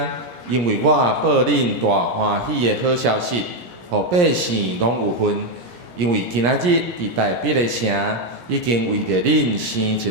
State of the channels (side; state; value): left; late; 17 ms